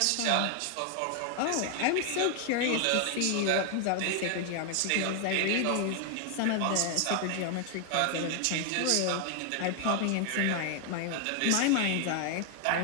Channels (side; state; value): both; different; correlation 0.00